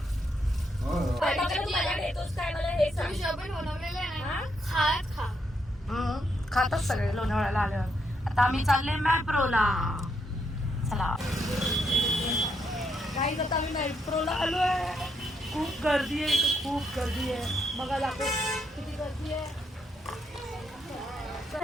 खातात सगळे लोणावळ्याला आल्यावर. आता आम्ही चालले मॅप्रोला. चला काही आता आम्ही मॅप्रोला आलोय. खूप गर्दी आहे इथे. खूप गर्दी आहे. बघा दाखव किती गर्दी आहे.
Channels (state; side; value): normal; both; correlation 0.77